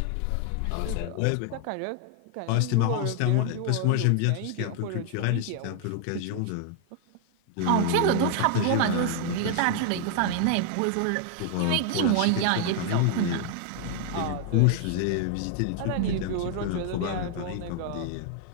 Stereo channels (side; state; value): both; different; correlation 0.00